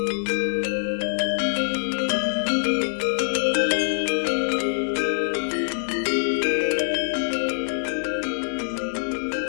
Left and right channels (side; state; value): right; silent; 61 dB below the other